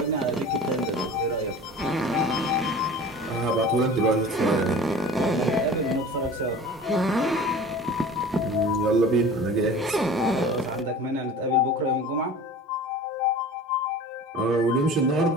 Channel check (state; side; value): normal; both; correlation 0.40